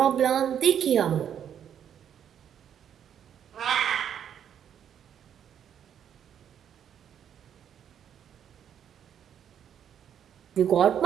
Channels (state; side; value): quieter; left; 9.1 dB